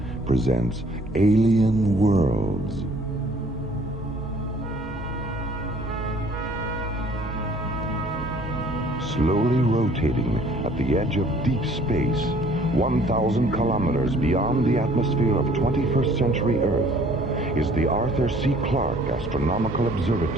presents Alien Worlds. Slowly rotating at the edge of deep space, 1,000 kilometers beyond the atmosphere of 21st century Earth, is the Arthur C. Clarke Astronomical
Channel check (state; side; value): normal; both; correlation 0.56